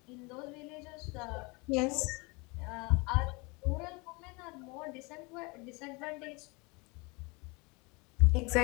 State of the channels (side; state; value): right; quieter; 27.9 dB